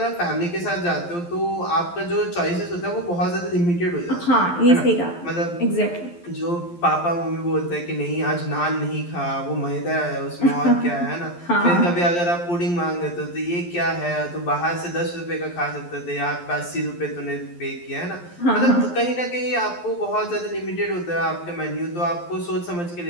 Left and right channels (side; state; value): right; late; 11 ms